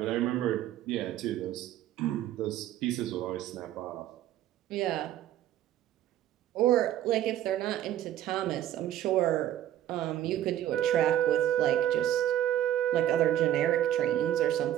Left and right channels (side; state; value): left; quieter; 12.1 dB